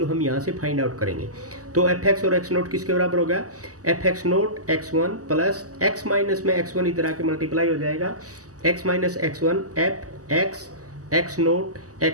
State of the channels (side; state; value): left; late; 0.66 ms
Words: हम यहाँ से फाइंड आउट करेंगे। तो एफ एक्स और एक्स नोट किसके बराबर हो गया, F x naught x1 plus x minus में x1 इधर आके मल्टीप्लाई हो जाएगा, x minus x1 F x x naught